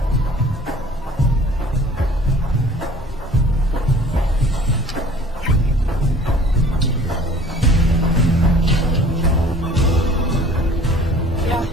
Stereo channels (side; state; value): both; normal; correlation 0.50